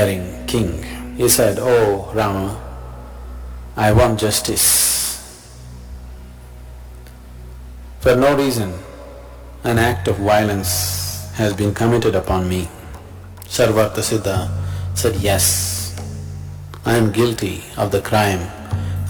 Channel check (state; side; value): identical; both; correlation 1.00